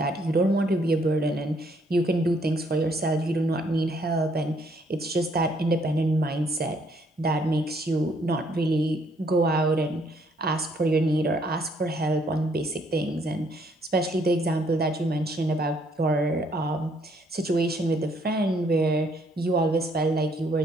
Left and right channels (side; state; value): both; normal; correlation 0.68